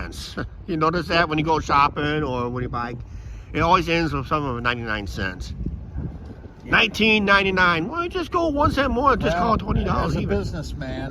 You notice that when you go shopping or when you buy, it always ends with something of 99 cents. $19.99. Well, just go 1 cent more. Just call it $20 as a even.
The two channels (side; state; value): both; identical; correlation 1.00